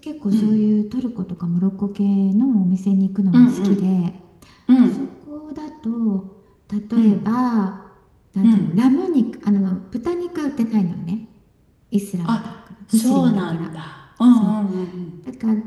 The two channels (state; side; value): identical; both; correlation 1.00